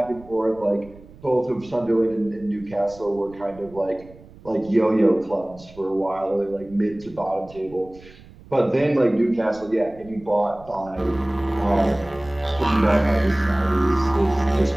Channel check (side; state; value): right; noise; rumble, 22 dB below the sound